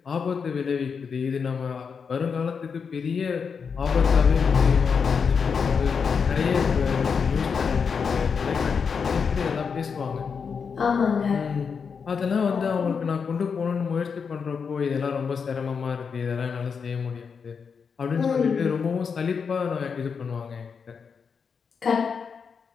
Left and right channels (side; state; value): right; quieter; 6.0 dB